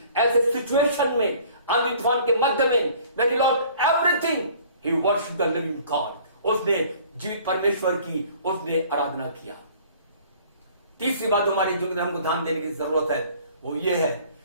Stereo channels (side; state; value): both; inverted; correlation -0.52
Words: ऐसे सिचुएशन में, आंधी तूफान के मध्य में, when he lost everything, he worshiped the living God। उसने जीवित परमेश्वर की उसने आराधना किया। तीसरी बात हमारे जीवन में हमको ध्यान देने की जरूरत है, वो ये है